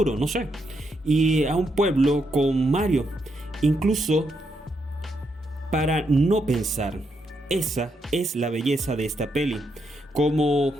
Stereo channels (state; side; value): normal; both; correlation 0.80